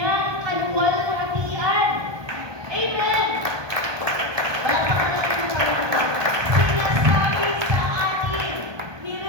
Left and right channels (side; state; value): left; late; 1.2 ms